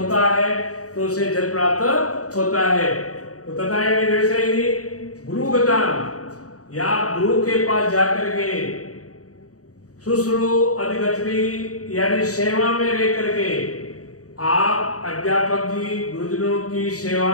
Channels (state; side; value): late; right; 0.66 ms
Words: है तो उसे जल प्राप्त होता है। तो तथा वैसे ही गुरुगता या गुरु के पास जाकर के शुश्रू अधिगच्छति यानी सेवा में रह करके आप अध्यापक जी गुरुजनों की सेवा